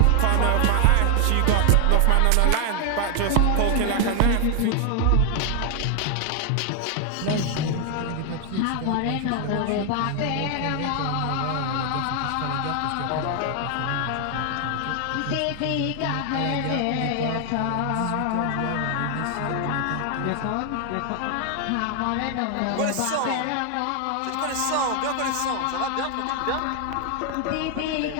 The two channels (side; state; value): both; different; correlation 0.00